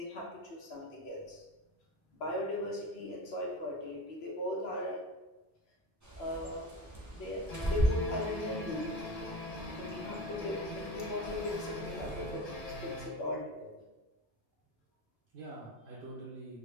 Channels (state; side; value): normal; both; correlation 0.29